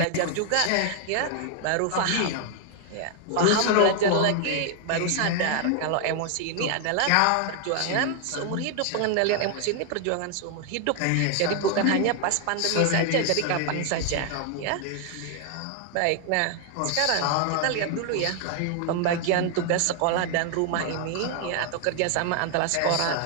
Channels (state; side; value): different; both; correlation 0.00